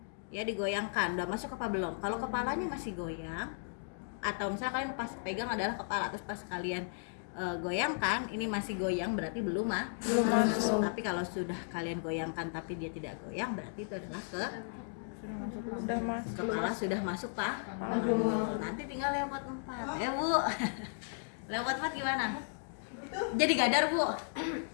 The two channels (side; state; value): right; silent; digital silence